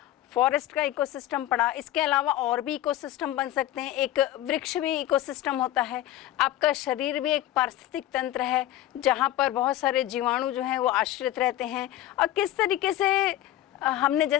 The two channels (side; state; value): right; quieter; 13.8 dB